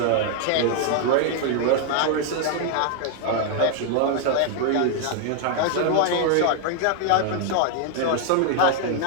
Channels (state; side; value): different; both; correlation 0.00